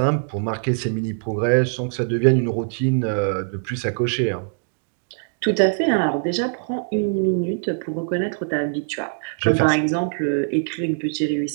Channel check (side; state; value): left; silent; digital silence